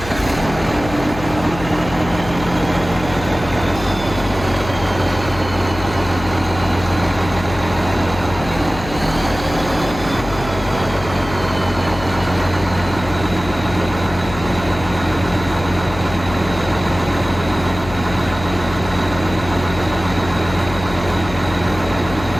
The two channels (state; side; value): noise; left; hum, 11 dB below the sound